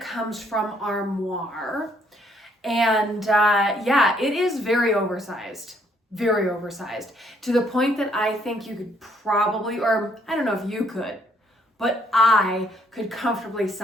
from Armoire. And yeah, it is very oversized to the point that I think you could probably, or I don't know if you could, but I could comfortably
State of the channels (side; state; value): both; normal; correlation 0.67